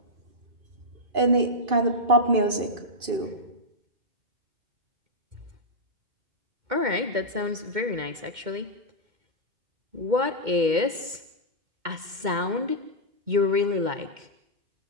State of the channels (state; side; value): late; left; 2.1 ms